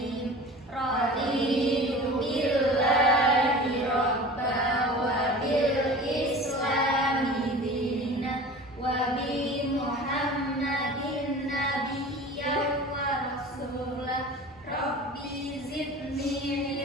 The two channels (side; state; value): both; normal; correlation 0.38